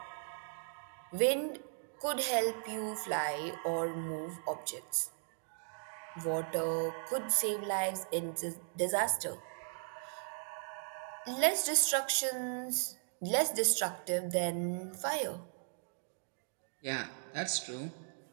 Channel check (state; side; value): silent; left; digital silence